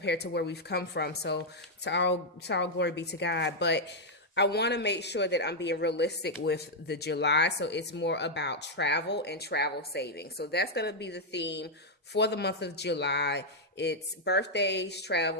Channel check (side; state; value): both; normal; correlation -0.02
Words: to where we've come from. So to all glory be to God. But I want to make sure that I'm being realistic with the July. So it's more about travel and travel savings. So that's going to be the theme for the month of July. It's birthdays,